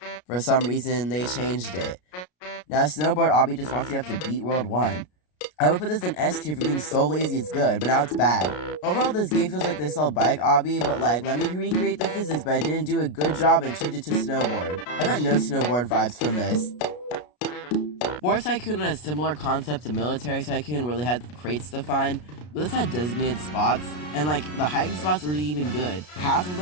For some reason, they changed it. Now, Snowboard Obby just wants you to have to beat World 1. I would put this in S tier for being so lazy it's good, but now it's bad. Overall, this game feels like they sell Bike Obby, but like, let me recreate the physics, but I didn't do a good job and change it to Snowboard. I got no Snowboard vibes from this. War Tycoon had a similar concept to Military Tycoon where they had crates to find, but this had designated spots, and like, the hiding spots were even good. Half of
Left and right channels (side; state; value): right; late; 33 ms